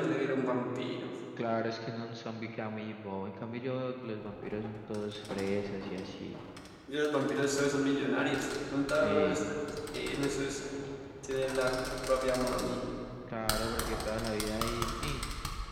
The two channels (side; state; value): both; identical; correlation 1.00